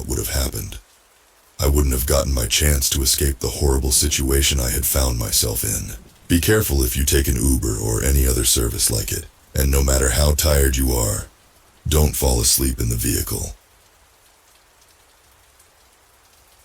would have happened. I wouldn't have gotten my chance to escape the horrible situation I had found myself in. Be careful if you take an Uber or any other service like it, and no matter how tired you are, don't fall asleep in the vehicle.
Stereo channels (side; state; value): both; identical; correlation 1.00